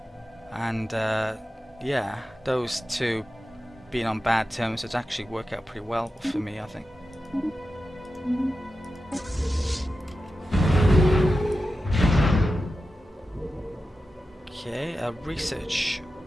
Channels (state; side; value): normal; both; correlation 0.92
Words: and yeah, those two being on bad terms would actually work out pretty well for me, I think. Okay, research.